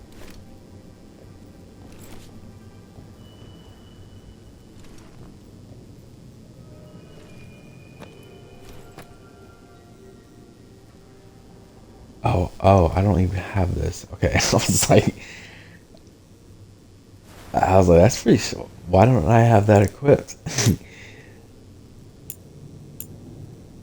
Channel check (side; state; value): both; identical; correlation 1.00